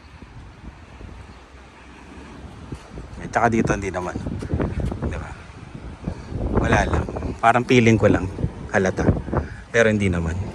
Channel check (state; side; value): identical; both; correlation 1.00